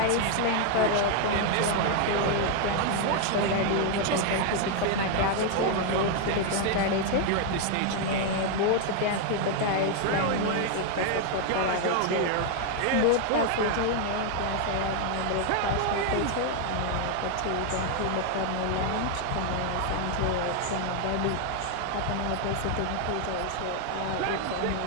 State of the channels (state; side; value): different; both; correlation 0.01